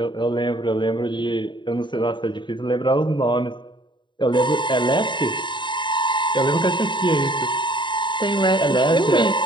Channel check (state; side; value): late; right; 0.23 ms